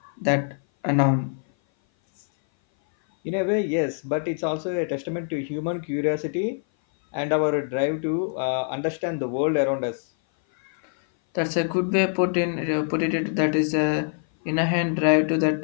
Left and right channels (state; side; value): silent; right; 57 dB below the other